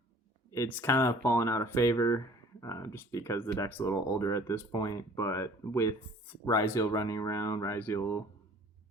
it's kind of fallen out of favor just because the deck's a little older at this point, but with Ryziel running around, Ryziel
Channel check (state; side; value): normal; both; correlation 0.51